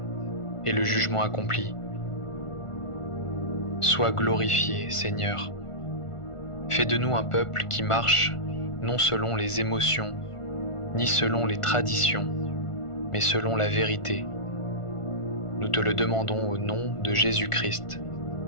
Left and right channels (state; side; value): late; right; 1.5 ms